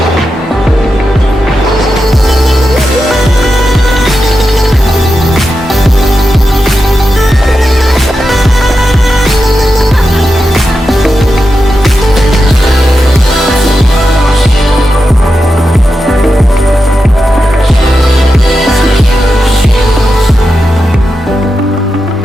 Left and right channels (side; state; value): both; normal; correlation 0.89